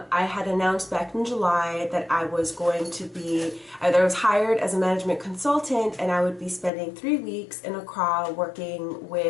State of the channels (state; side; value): drops out; right; at 6.7 s